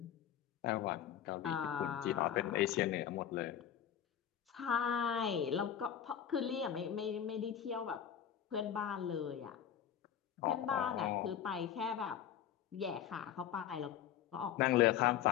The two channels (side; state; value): right; quieter; 9.7 dB